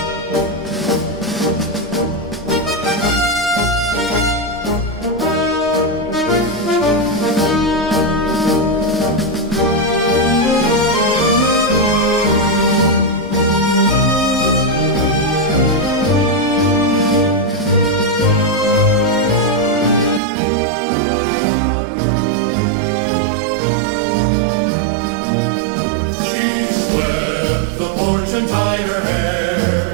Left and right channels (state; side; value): drops out; left; at 20.2 s